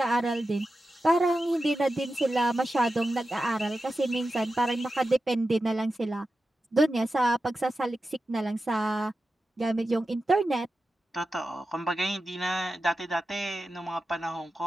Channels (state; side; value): normal; both; correlation 0.92